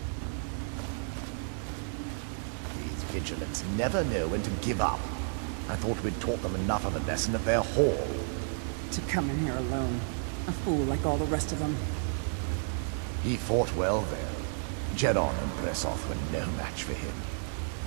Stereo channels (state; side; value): silent; left; digital silence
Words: These vigilants never know when to give up. I thought we'd taught them enough of a lesson at their hall. To come in here alone. A fool like all the rest of them. He fought well there. Jedon and Bressoth were no match for him.